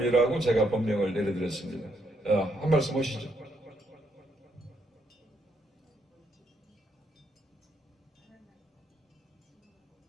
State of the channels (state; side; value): normal; both; correlation 0.75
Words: 제가 법명을 내려드렸습니다. 한 말씀 하시죠.